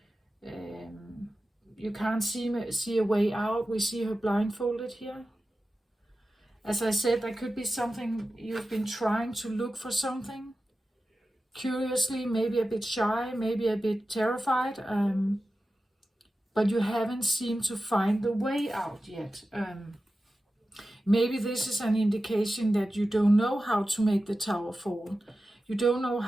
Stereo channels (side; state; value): both; normal; correlation 0.93